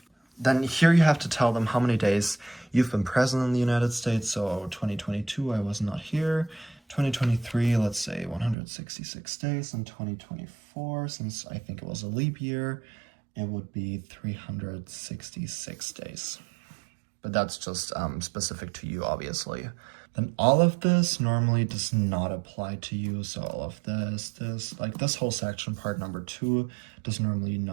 Then here you have to tell them how many days you've been present in the United States. So 2022, I was not here. 2023, let's say 166 days. And 2024, since I think it was a leap year, it would be 366 days. But that's just specific to you, obviously. Then all of this normally does not apply to you. So all of this, like this whole section, part number 2, does normally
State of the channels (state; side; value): drops out; left; at 8.6 s